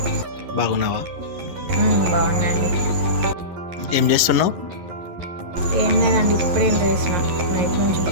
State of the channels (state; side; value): late; left; 11 ms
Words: బాగున్నావా? బాగున్నాండి. ఏం చేస్తున్నావు? ఏం లేదండి, ఇప్పుడేం వేసిన. నైట్ నుంచి